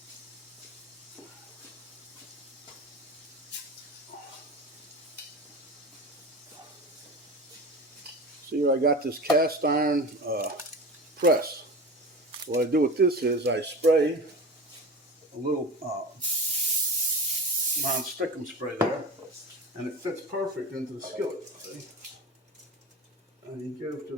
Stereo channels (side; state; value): both; normal; correlation 0.31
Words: See here, I got this cast iron press. What I do with this is I spray a little non-stickum spray there, and it fits perfect into the skillet. See? And you give